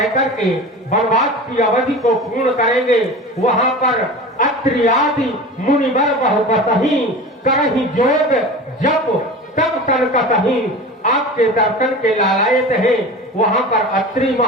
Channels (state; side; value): normal; both; correlation 0.33